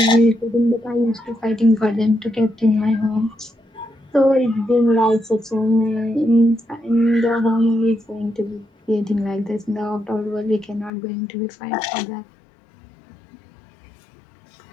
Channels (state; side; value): drops out; right; at 10.9 s